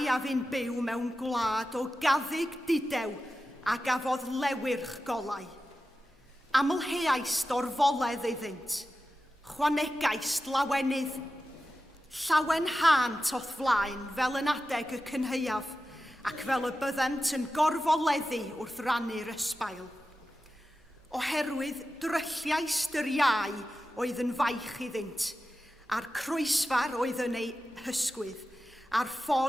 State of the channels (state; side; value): normal; both; correlation 0.93